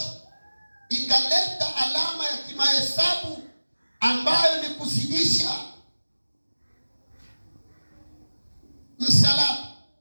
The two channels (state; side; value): inverted; both; correlation -1.00